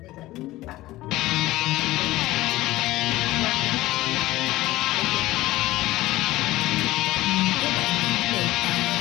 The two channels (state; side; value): quieter; right; 17.3 dB